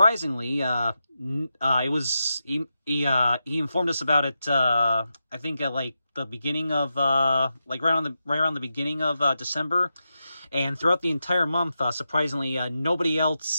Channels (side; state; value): both; inverted; correlation -0.88